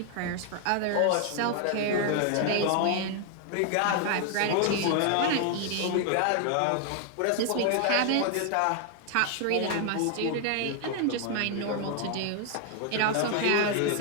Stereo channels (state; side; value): different; both; correlation 0.00